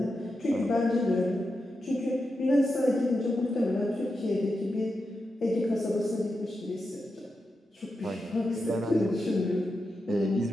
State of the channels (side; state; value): both; normal; correlation 0.88